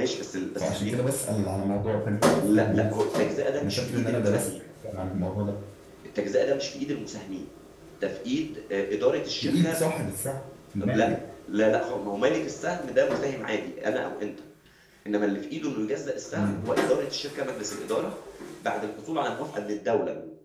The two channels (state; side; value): identical; both; correlation 1.00